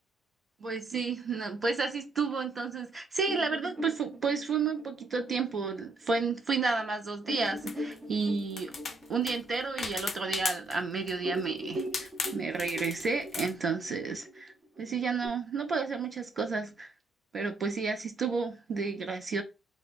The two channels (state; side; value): quieter; left; 3.6 dB